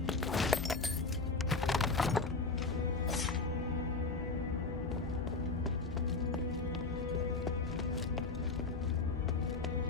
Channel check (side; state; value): right; quieter; 3.9 dB